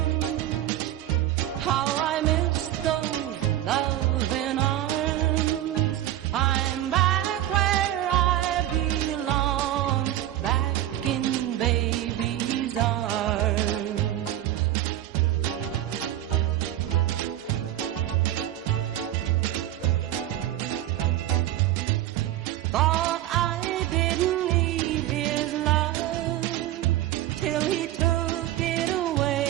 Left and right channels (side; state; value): left; quieter; 13.5 dB